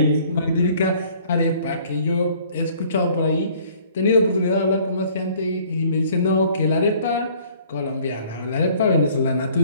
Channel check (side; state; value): both; inverted; correlation -0.56